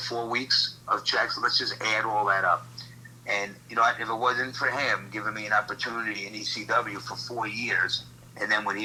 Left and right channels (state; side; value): identical; both; correlation 1.00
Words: 4 weeks of checks. Let's just add all that up. And if it wasn't for him giving me an opportunity in ECW for 4 years. And then when